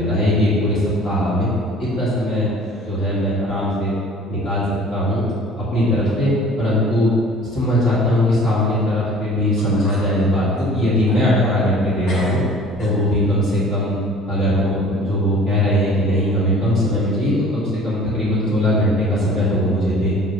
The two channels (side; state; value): both; normal; correlation 0.48